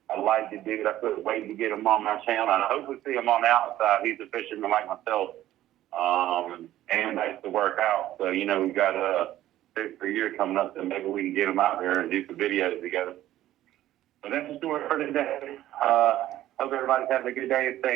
I like the dude. I couldn't wait to get him on my channel, and I hope we see him on the outside. He's a fisherman like myself, and likes to work out. So, we got a year coming up, so maybe we can get him out there and do some videos together. But that's the story for today. Hope everybody's having a good day and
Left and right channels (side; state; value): left; quieter; 13.8 dB